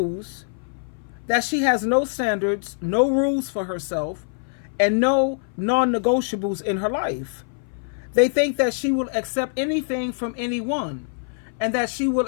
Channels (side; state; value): right; silent; 58 dB below the other